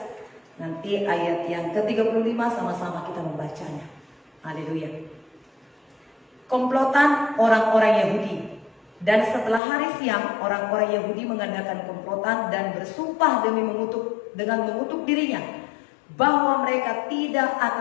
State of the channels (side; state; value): right; drops out; at 9.6 s